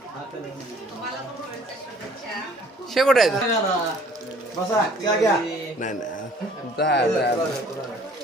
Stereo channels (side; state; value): both; normal; correlation 0.55